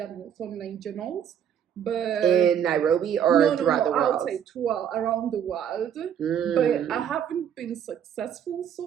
online journals. but In Nairobi or throughout the world? outside, throughout around the world. Mm. But I haven't been successful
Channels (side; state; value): left; quieter; 8.9 dB